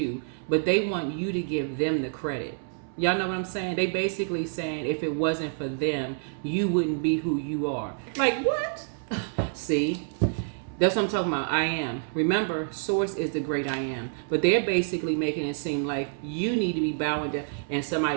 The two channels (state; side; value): silent; left; 60 dB below the other